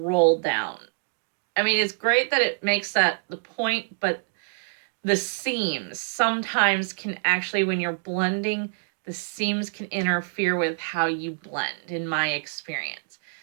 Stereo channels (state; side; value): silent; left; digital silence